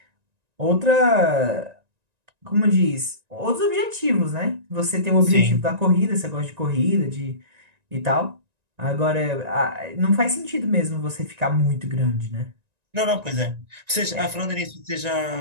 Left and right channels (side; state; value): left; late; 1.9 ms